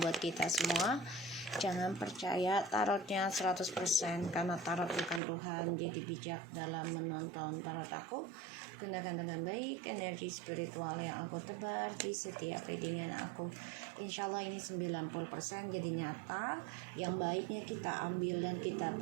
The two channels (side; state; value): left; drops out; at 5.2 s